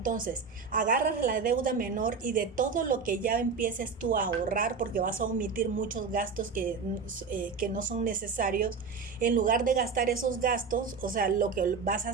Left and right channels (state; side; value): quieter; left; 5.3 dB